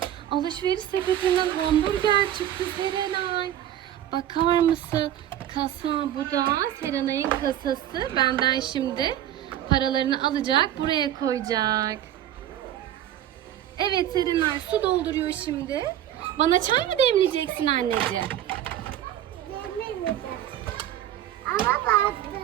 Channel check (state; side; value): quieter; left; 11.7 dB